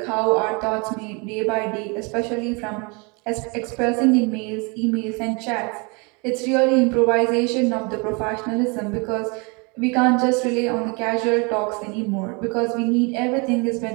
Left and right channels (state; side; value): quieter; left; 31.0 dB